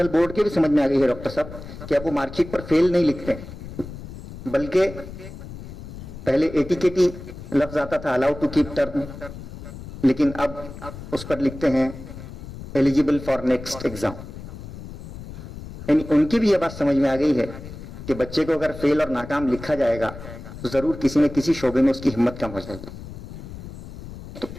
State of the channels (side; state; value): left; noise; rumble, 12 dB below the sound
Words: बोर्ड के भी समझ में आ गई है डॉक्टर साहब कि अब वो मार्कशीट पर फेल नहीं लिखते, बल्कि पहले एटीकेटी लफ्ज आता था, अलाउ टू कीप टर्म, लेकिन अब उस पर लिखते हैं एलिजिबल फॉर नेक्स्ट एग्जाम। यानी उनकी भी यह बात समझ में आ गई है कि बच्चे को अगर फेल और नाकाम लिखा जाएगा तो जरूर किसी न किसी शोबे में उसकी हिम्मत कम हो जाएगी। तो